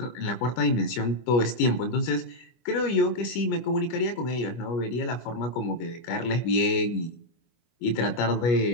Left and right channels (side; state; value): right; late; 25 ms